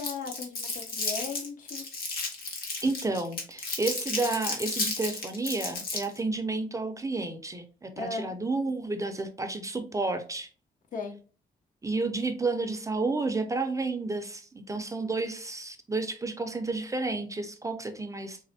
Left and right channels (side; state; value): both; normal; correlation 0.55